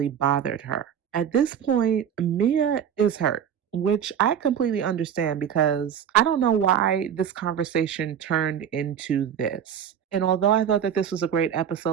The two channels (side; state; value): left; quieter; 8.8 dB